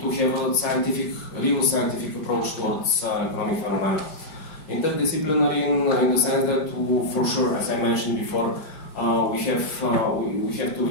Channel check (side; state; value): right; late; 5.0 ms